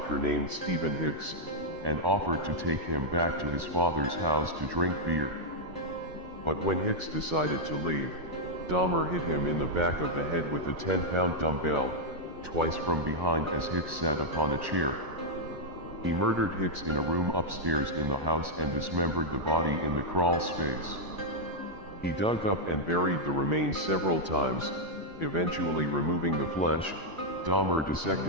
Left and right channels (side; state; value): left; late; 1.1 ms